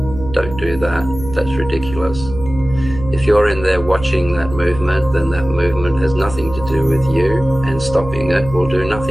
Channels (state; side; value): noise; right; hum, 11 dB below the sound